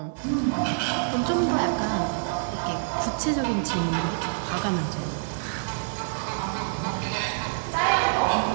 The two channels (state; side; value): silent; left; digital silence